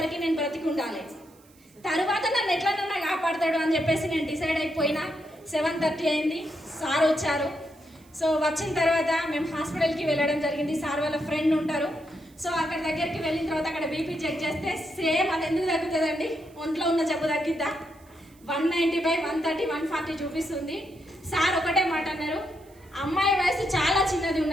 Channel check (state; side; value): noise; right; hiss, 29 dB below the sound